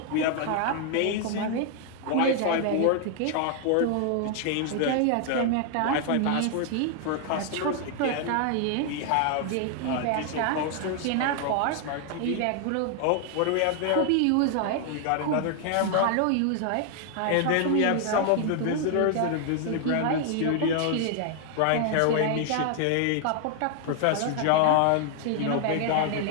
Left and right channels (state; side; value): different; both; correlation 0.00